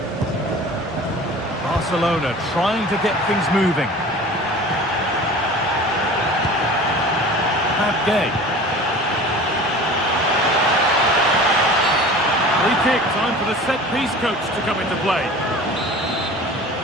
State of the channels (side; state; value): both; normal; correlation 0.40